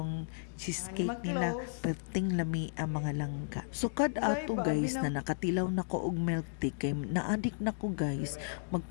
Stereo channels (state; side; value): silent; right; digital silence